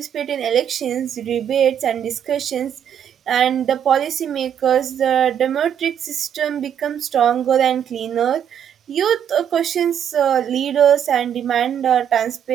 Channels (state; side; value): quieter; left; 9.0 dB